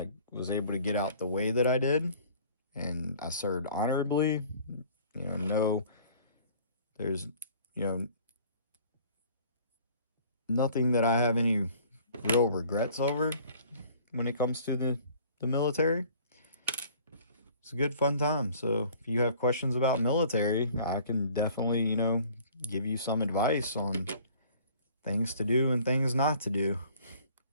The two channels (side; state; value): both; inverted; correlation -0.52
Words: was able to get out the way that I did. And I served honorably. You know, no, there's, you know, nothing that I have any real regrets over when it comes to the military. It's a good fun time. So if you have questions about military, I can definitely, you know, give you some advice on things to do and things not to do.